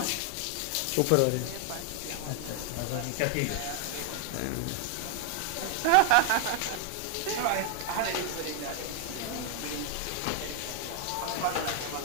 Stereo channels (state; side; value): different; both; correlation 0.00